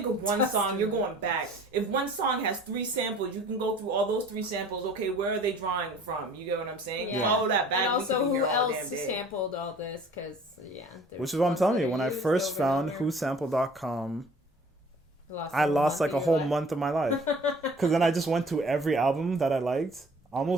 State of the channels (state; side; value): normal; both; correlation 0.50